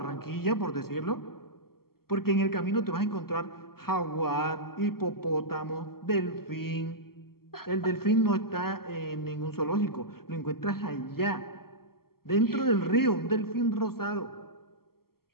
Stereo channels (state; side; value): late; right; 0.94 ms